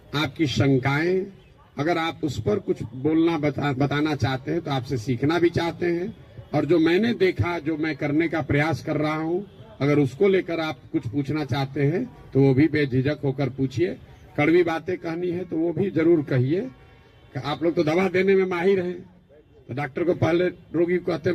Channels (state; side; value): identical; both; correlation 1.00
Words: आपकी शंकाएं, अगर आप उस पर कुछ बोलना बताना चाहते हैं तो आपसे सीखना भी चाहते हैं, और जो मैंने देखा, जो मैं करने का प्रयास कर रहा हूं, अगर उसको लेकर आप कुछ पूछना चाहते हैं तो वो भी बेझिझक होकर पूछिए। कड़वी बातें कहनी है तो वो भी जरूर कहिए। आप लोग तो दवा देने में माहिर हैं, तो डॉक्टर को पहले रोगी को कहते